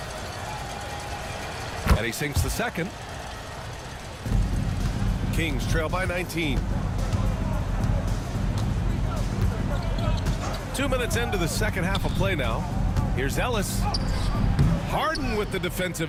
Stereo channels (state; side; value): identical; both; correlation 1.00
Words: And he sinks the second. Kings trail by 19. 2 minutes into the second half of play now. Here's Ellis. Harden with the